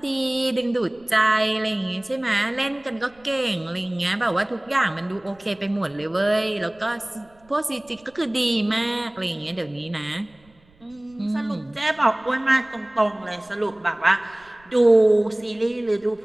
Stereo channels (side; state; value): right; noise; rumble, 30 dB below the sound